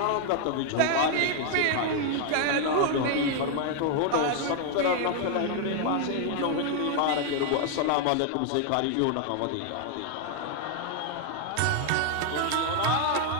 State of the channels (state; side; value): different; both; correlation 0.00